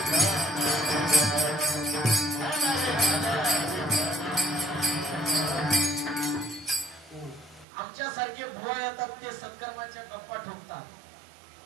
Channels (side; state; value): left; drops out; at 7.7 s